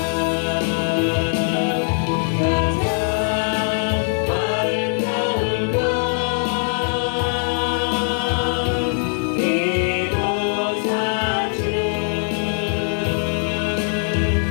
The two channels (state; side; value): silent; right; digital silence